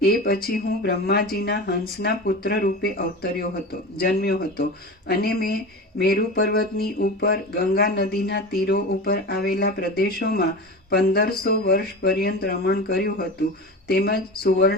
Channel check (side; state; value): both; normal; correlation 0.29